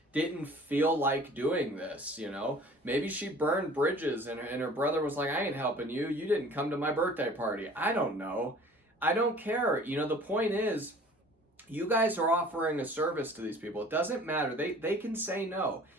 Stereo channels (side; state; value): both; normal; correlation 0.48